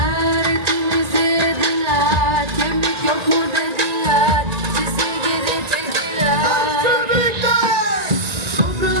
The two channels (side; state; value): left; late; 1.8 ms